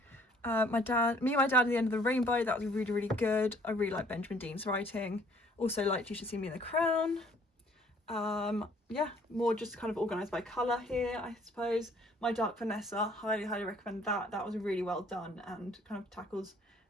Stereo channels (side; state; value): both; normal; correlation 0.59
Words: and My Dad at the End of the Rainbow, that was really, really good. I really like Benjamin Dean's writing. Also liked You Should See Me in the Crown. Yeah, more just kind of organised by colour here, I suppose. My Dark Vanessa, highly recommend that. That was really well done and kind of tackles